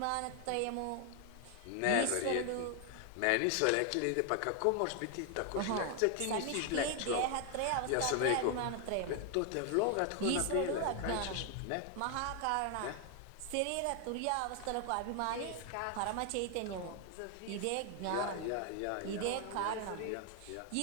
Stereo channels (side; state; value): both; different; correlation 0.00